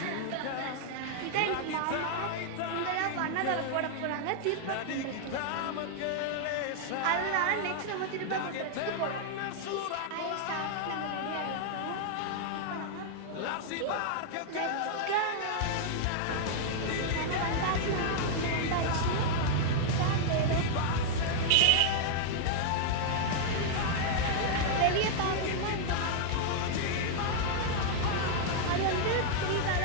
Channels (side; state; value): both; different; correlation -0.01